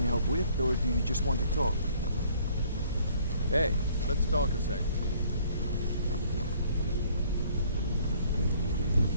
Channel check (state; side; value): inverted; both; correlation -0.59